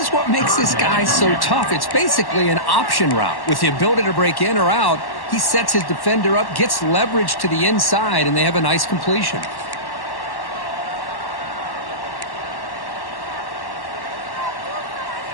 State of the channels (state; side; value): late; right; 1.1 ms